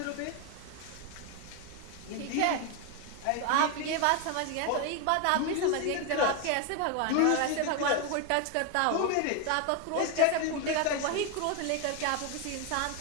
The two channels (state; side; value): different; both; correlation 0.01